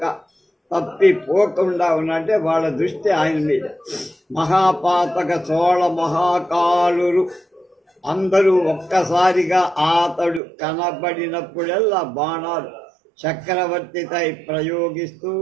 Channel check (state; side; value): drops out; left; at 10.4 s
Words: తప్పిపోకుండా ఉన్నట్టే వాళ్ళ దృష్టి ఆయన మీద. మహాపాతక చోళ మహాకాలురు అందరూ ఒక్కసారిగా అతడు కనబడినప్పుడల్లా బాణాలు చక్రవర్తిపై ప్రయోగిస్తూ